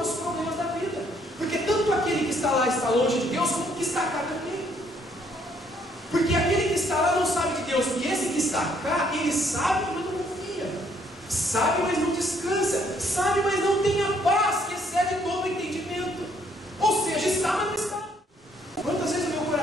os problemas da vida. Porque tanto aquele que está lá está longe de Deus, como o que está cá também. Porque aquele que está lá não sabe de Deus, e esse que está cá, ele sabe, mas não confia. Sabe, mas não descansa. Sabe, mas não tem a paz que excede todo o entendimento. Ou seja, está, mas não está. Quantas vezes o meu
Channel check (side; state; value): both; normal; correlation 0.67